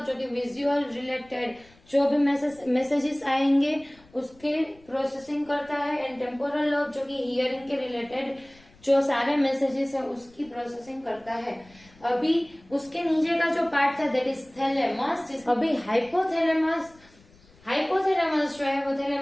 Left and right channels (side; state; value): left; noise; rumble, 28 dB below the sound